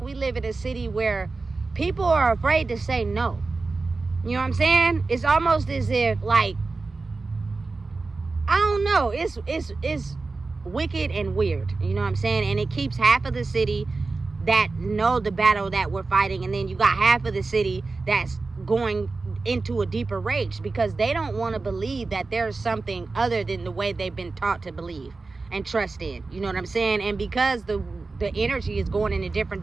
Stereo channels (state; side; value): quieter; left; 3.8 dB